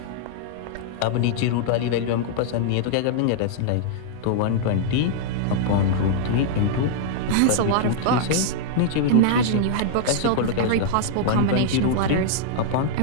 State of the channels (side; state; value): both; different; correlation -0.01